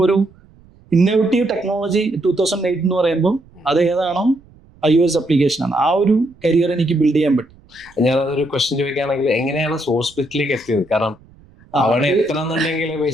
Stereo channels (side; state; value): right; noise; rumble, 27 dB below the sound